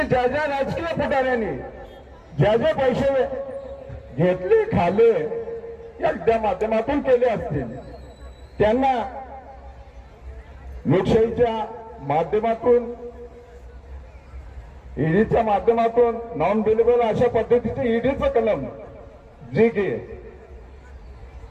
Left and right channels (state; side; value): identical; both; correlation 1.00